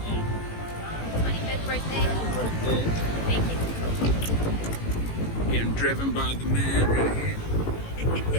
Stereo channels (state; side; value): late; right; 18 ms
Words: 25th birthday. Happy birthday. Thank you. Getting driven by the man right here.